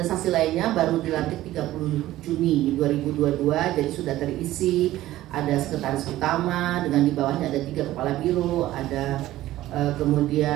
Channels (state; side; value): quieter; left; 15.2 dB